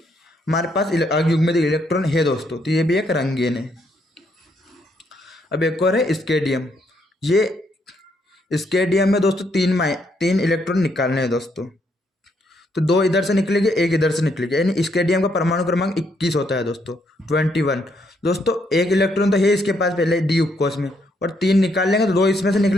हमारे पास अयुग्मित इलेक्ट्रॉन है दोस्तों। तो ये भी एक रंगीन है। अब एक और है स्केडियम। ये स्केडियम में दोस्तों 3 इलेक्ट्रॉन निकालने हैं दोस्तों। तो 2 इधर से निकलेंगे, 1 इधर से निकलेगा, यानी स्केडियम का परमाणु क्रमांक 21 होता है दोस्तों, 21। दोस्तों 1 इलेक्ट्रॉन तो है इसके पास पहले डी उपकोष में, और 3 निकाल लेंगे तो 2 इसमें से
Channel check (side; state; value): both; normal; correlation 0.74